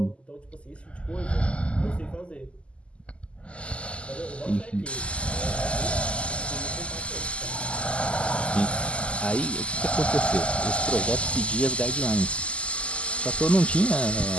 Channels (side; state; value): right; late; 0.055 ms